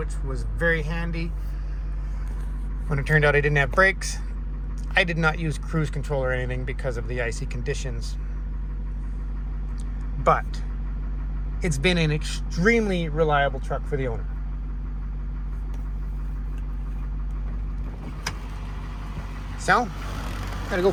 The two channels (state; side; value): identical; both; correlation 1.00